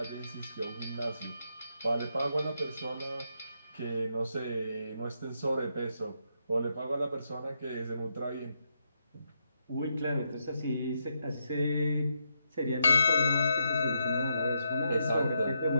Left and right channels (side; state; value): both; inverted; correlation -0.81